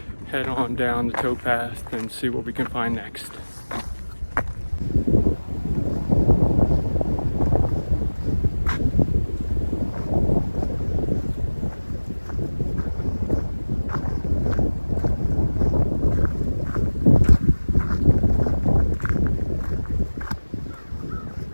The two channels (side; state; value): both; inverted; correlation -1.00